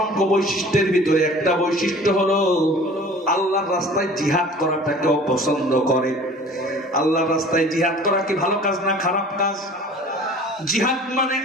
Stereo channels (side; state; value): both; normal; correlation 0.45